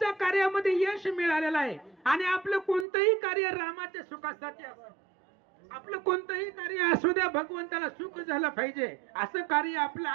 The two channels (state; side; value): drops out; left; at 2.9 s